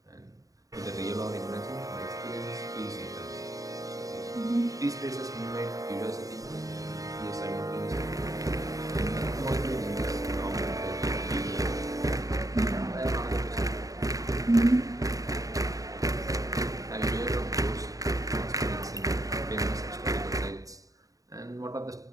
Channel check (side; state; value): left; late; 0.17 ms